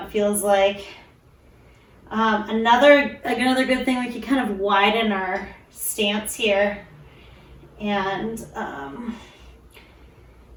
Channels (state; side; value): identical; both; correlation 1.00